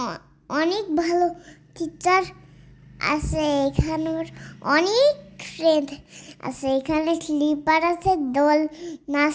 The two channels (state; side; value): identical; both; correlation 1.00